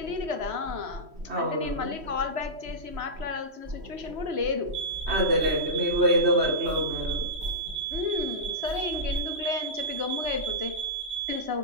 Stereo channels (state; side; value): late; left; 3.1 ms